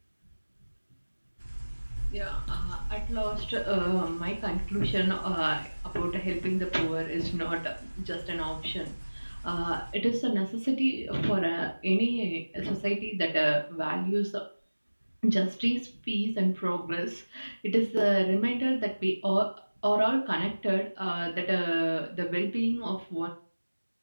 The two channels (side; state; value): both; inverted; correlation -1.00